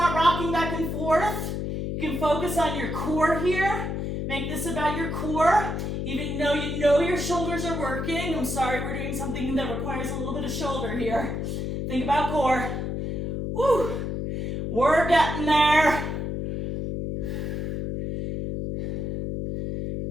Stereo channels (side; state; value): left; noise; hum, 3 dB below the sound